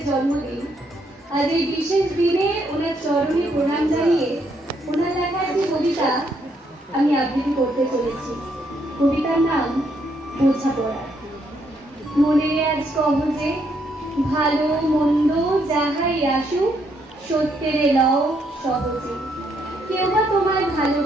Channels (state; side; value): normal; both; correlation 0.74